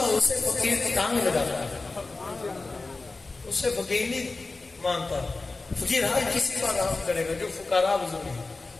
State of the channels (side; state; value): right; quieter; 3.6 dB